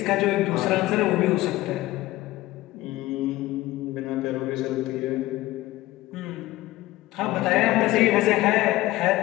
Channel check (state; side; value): quieter; right; 17.5 dB